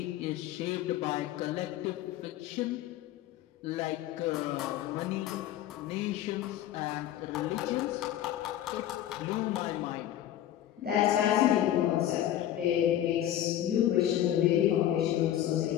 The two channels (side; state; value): right; quieter; 12.1 dB